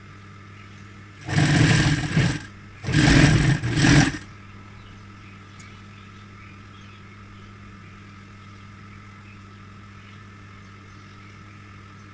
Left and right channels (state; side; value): identical; both; correlation 1.00